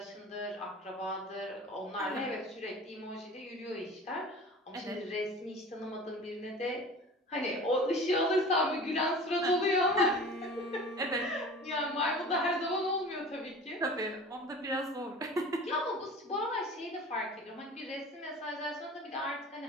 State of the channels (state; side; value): normal; both; correlation 0.40